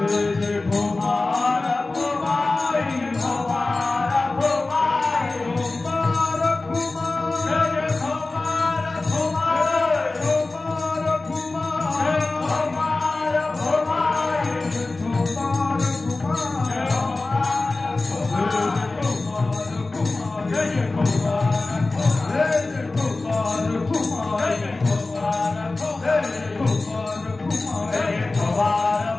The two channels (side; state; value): right; quieter; 3.3 dB